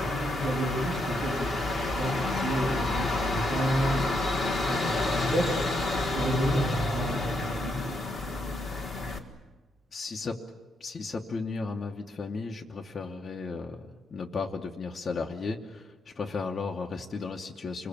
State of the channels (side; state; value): both; normal; correlation 0.79